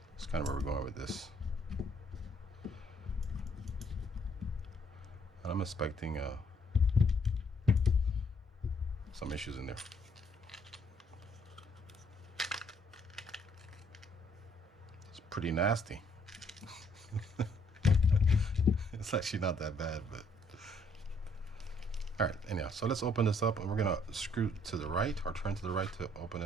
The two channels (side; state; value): both; normal; correlation 0.66